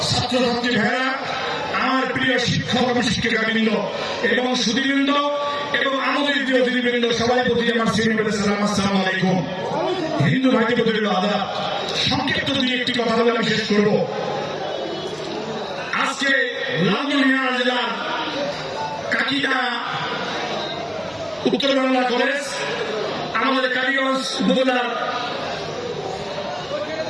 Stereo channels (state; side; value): identical; both; correlation 1.00